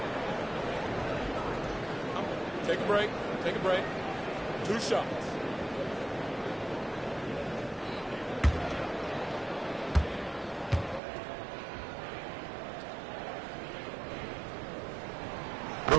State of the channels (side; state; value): left; drops out; at 11.0 s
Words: Take a break. Take a break. 2 shots.